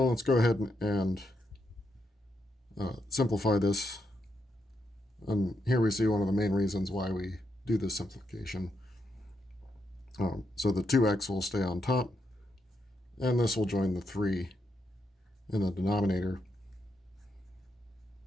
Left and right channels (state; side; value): normal; both; correlation 0.81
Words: let's go ahead and simplify this. And here we see one of the main reasons why we do this simplification. So the 2x will stay on top, and this will join the 3 in the denominator.